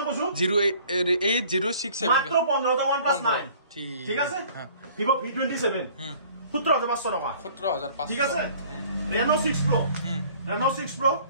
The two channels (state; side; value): inverted; both; correlation -0.53